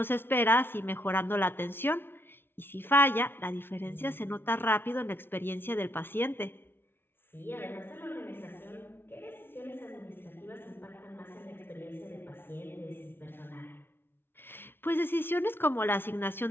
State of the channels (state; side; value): late; right; 0.11 ms